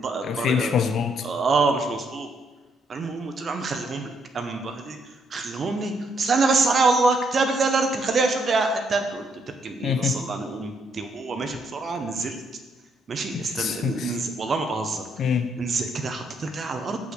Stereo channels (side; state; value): both; normal; correlation 0.73